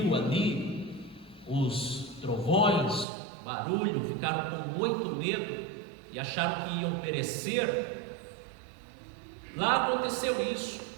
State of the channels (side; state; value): left; drops out; at 3.1 s